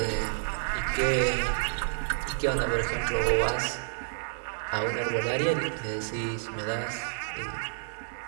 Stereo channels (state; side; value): silent; left; 58 dB below the other